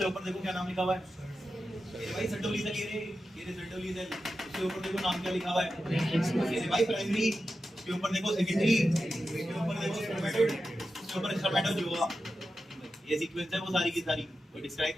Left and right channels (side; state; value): both; normal; correlation 0.91